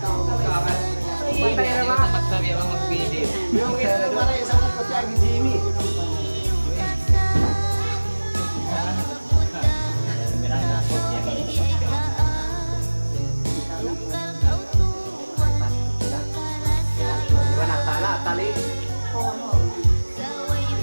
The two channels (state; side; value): inverted; both; correlation -1.00